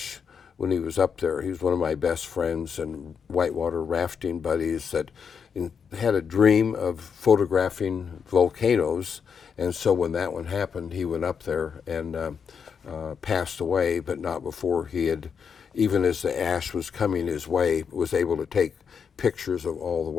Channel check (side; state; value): right; quieter; 6.6 dB